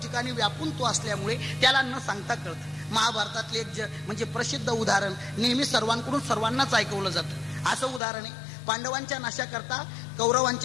व्यापून तो असल्यामुळे त्याला न सांगता कळतं. महाभारतातले एक म्हणजे प्रसिद्ध उदाहरण नेहमी सर्वांकडून सर्वांनाच ऐकवलं जातं. असं उदाहरण आहे, पांडवांच्या नाशाकरता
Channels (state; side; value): drops out; right; at 8.0 s